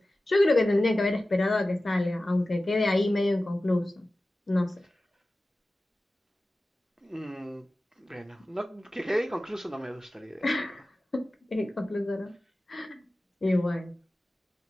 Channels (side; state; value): both; normal; correlation 0.96